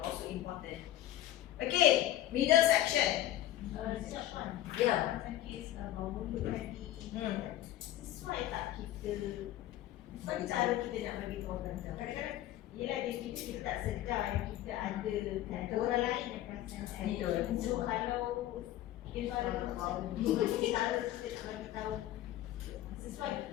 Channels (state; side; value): quieter; right; 13.7 dB